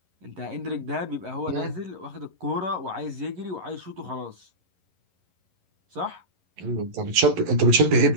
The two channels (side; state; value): left; late; 11 ms